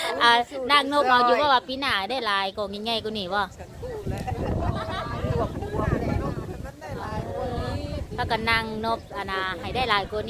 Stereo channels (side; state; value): both; identical; correlation 1.00